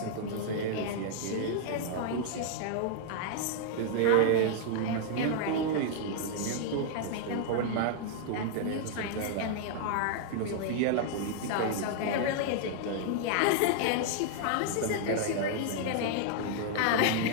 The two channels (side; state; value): both; different; correlation -0.01